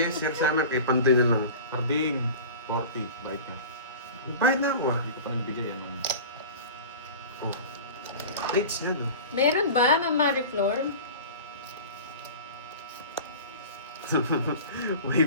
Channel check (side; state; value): both; inverted; correlation -0.36